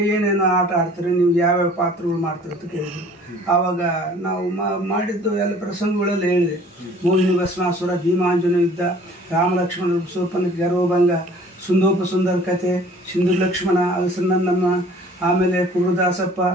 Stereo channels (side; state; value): both; normal; correlation 0.51